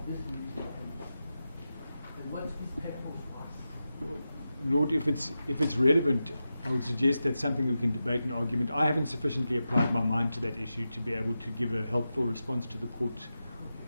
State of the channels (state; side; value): inverted; both; correlation -0.91